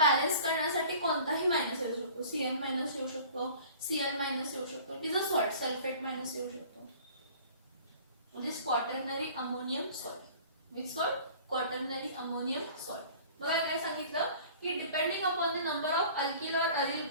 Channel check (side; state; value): both; inverted; correlation -0.46